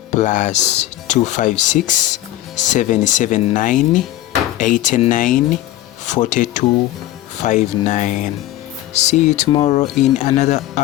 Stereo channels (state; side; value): quieter; right; 14.8 dB